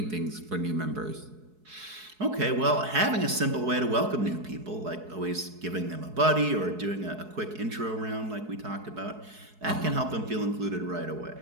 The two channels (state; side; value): late; left; 4.7 ms